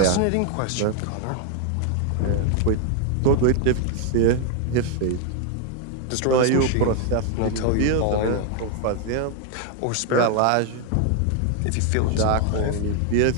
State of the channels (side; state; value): both; different; correlation 0.00